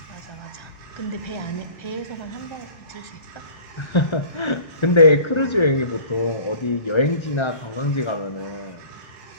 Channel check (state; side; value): late; right; 1.3 ms